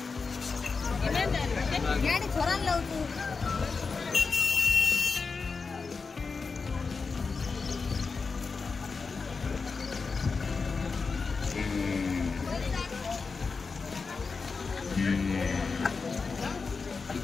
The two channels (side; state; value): right; quieter; 4.7 dB